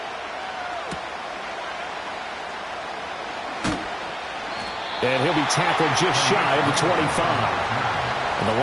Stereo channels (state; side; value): identical; both; correlation 1.00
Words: And he'll be tackled just shy of the 25. And the